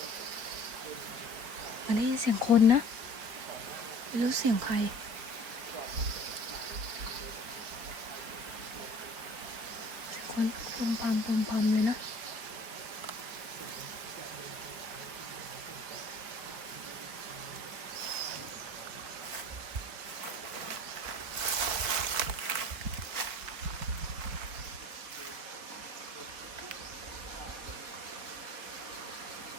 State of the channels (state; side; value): late; left; 4.5 ms